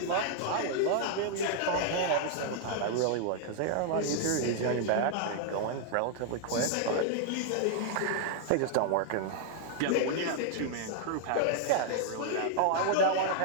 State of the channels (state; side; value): different; both; correlation 0.00